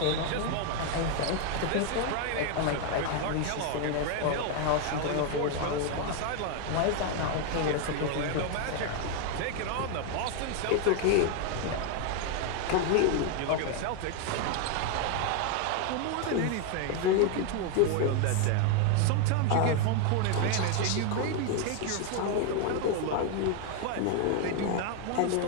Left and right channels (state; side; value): different; both; correlation 0.01